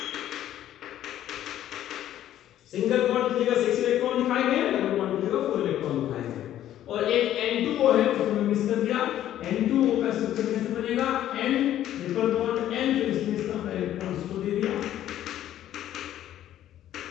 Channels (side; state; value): right; quieter; 12.1 dB